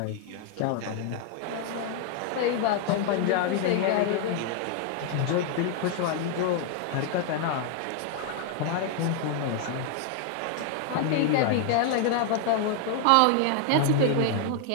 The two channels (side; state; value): both; different; correlation 0.00